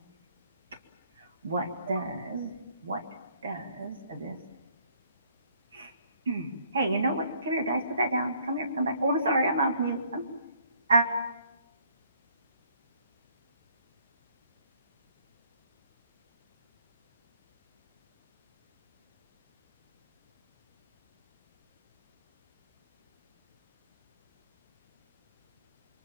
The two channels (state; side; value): inverted; both; correlation -0.63